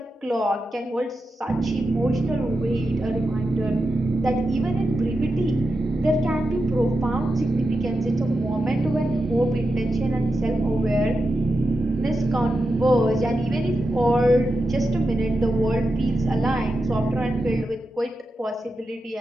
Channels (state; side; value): normal; both; correlation 0.89